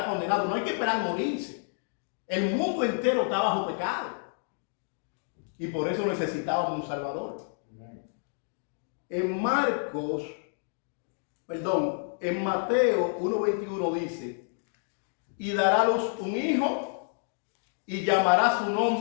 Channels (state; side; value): silent; right; digital silence